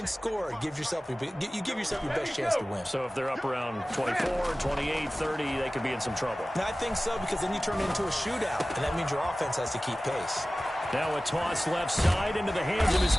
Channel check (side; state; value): both; normal; correlation 0.97